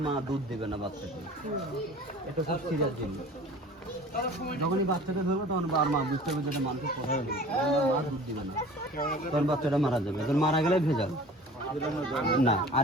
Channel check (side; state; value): both; normal; correlation 0.44